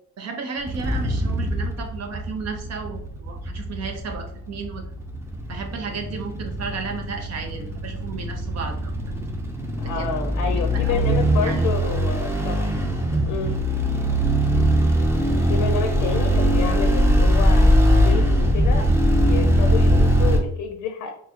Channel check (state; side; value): normal; both; correlation 0.73